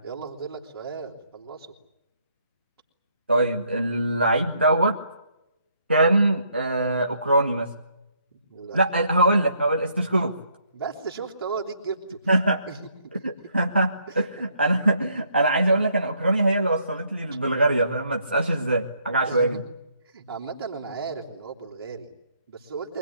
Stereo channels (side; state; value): both; inverted; correlation -0.70